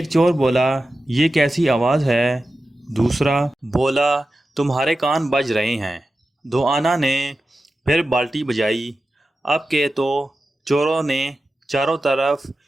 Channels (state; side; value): normal; both; correlation 0.93